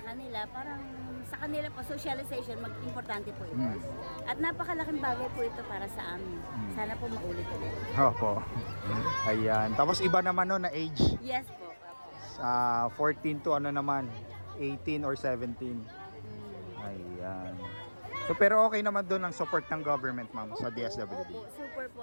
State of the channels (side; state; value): both; inverted; correlation -1.00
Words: kanila, parang sa kanila po socialization importante po ito. Hmm. At napakalaking bagay po ito para sa amin. Sana po maulit ulit. Opo. Ayan. Tapos iba naman no na age. Yes po. Opo. 14 to ano naman, 18 or 17. Ayan. So pero okay naman doon ang support ng government, ma'am, sa DSWD. Opo, super po